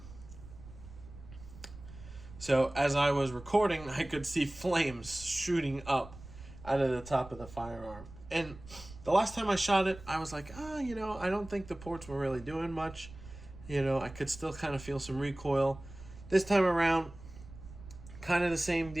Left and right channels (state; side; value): noise; right; rumble, 16 dB below the sound